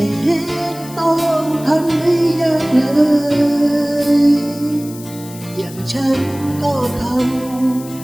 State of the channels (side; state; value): left; noise; hiss, 17 dB below the sound